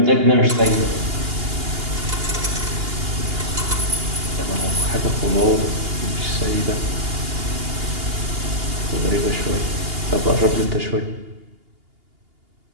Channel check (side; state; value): left; late; 2.8 ms